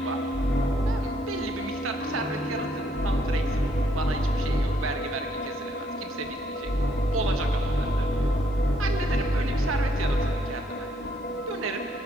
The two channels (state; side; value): normal; both; correlation 0.70